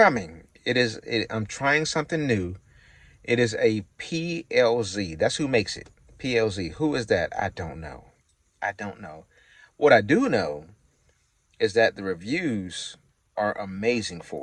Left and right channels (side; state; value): both; identical; correlation 1.00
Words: I'm trying something new. It is a PLZ. That's who makes it. PLZ. Who is that? I don't know. What I do know is that the reviews are amazing